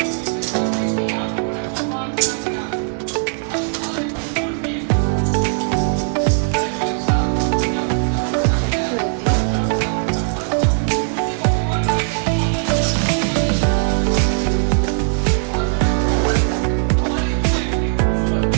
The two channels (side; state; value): left; silent; digital silence